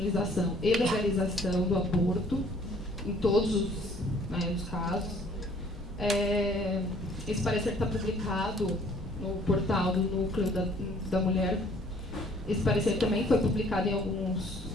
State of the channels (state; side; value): normal; both; correlation 0.58